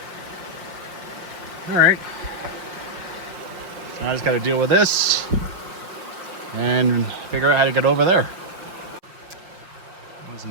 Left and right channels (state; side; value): late; left; 5.3 ms